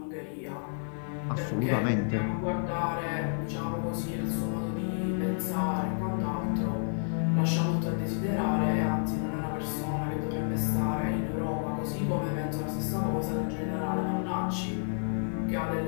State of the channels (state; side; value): silent; right; digital silence